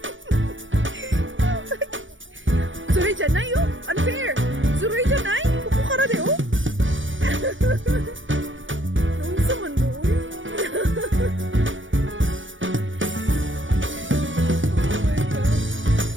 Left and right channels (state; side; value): late; left; 0.56 ms